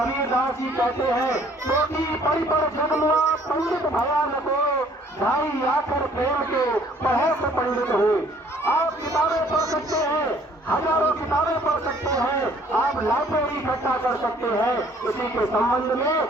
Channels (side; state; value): both; normal; correlation 0.59